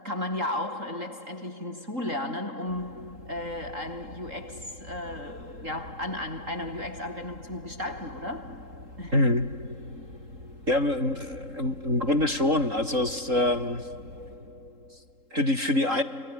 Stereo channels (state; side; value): late; left; 3.8 ms